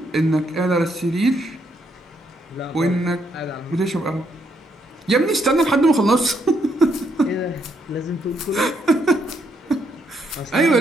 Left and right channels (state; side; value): normal; both; correlation 0.75